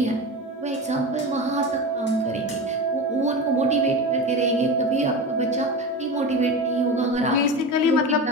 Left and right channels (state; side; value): normal; both; correlation 0.26